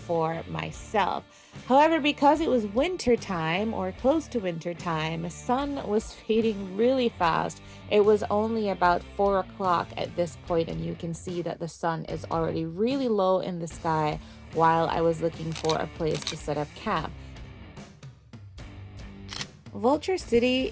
myself. However, because it was winter time or close to winter time, the sun was fading really fast. It was only about 4 o'clock at this point and you can see that the sun is already really low in the sky while I was looking for a place to set up camp. Vulture City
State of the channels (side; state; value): both; identical; correlation 1.00